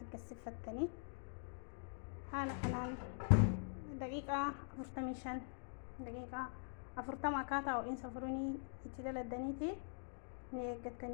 gassifattanii haala kanaan daqiiqaa 45 daqiiqaa 40 akkaataa ho'iinsa furunii itti daladaniiti ni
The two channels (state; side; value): silent; right; digital silence